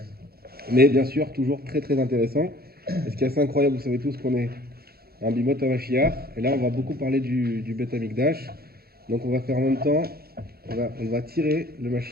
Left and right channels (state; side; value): late; left; 0.45 ms